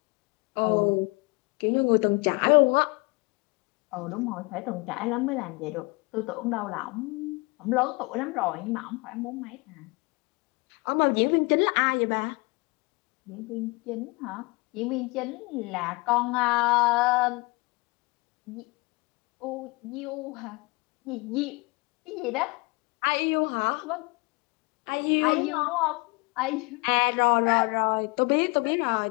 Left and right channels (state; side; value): quieter; right; 26.7 dB